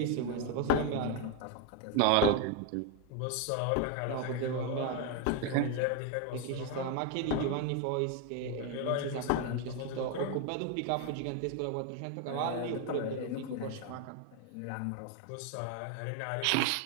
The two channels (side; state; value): both; different; correlation 0.01